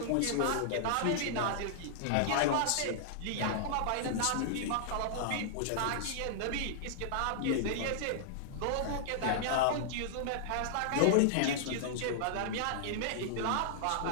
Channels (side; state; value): both; different; correlation -0.01